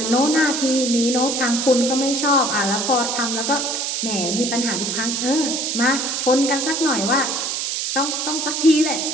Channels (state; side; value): noise; right; hiss, 1 dB below the sound